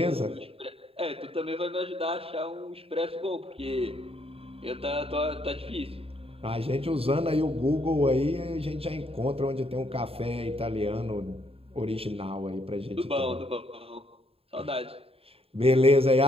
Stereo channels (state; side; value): late; left; 0.28 ms